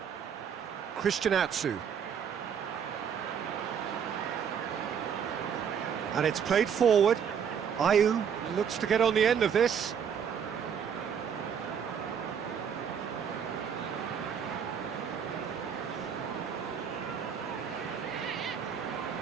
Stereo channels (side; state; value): left; quieter; 7.6 dB